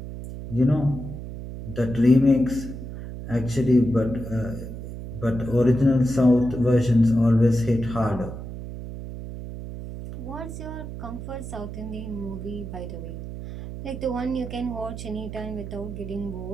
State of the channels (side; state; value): right; noise; hum, 9 dB below the sound